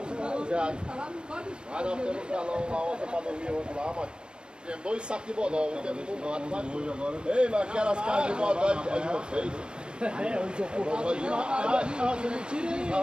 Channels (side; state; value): left; late; 0.050 ms